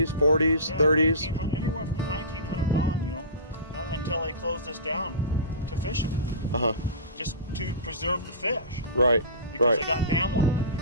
40s, Yeah, 30s? Anywhere from the 1900s on, you know, until they closed this down to fishing. Uh-huh. Just to preserve the fish. Right, Because right. they got dam locked in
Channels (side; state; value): both; inverted; correlation -0.31